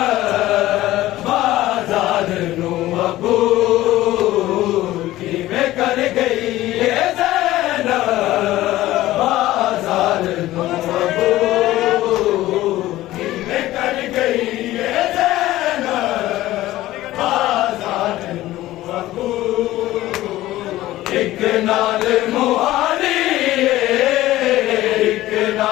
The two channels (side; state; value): right; quieter; 15.8 dB